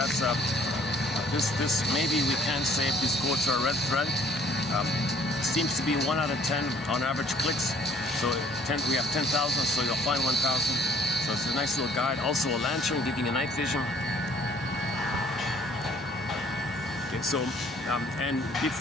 this maybe we can say if these quotes are a red thread. Seems to be 1 out of 10 on average clicks. So we have 10,000, so you'll find 1,000. So it's a nice little guide. Also a lantern giving you night vision. Okay, so and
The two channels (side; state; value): both; normal; correlation 0.57